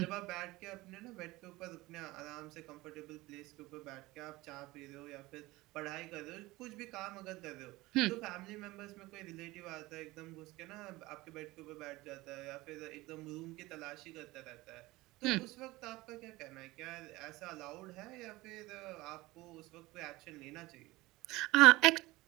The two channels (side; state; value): left; quieter; 20.0 dB